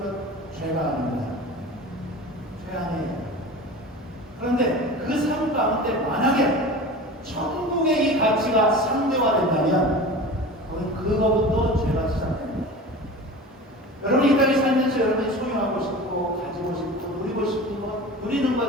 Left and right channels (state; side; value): normal; both; correlation 0.34